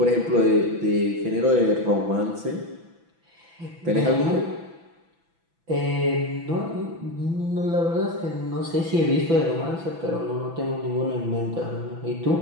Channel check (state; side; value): late; left; 6.0 ms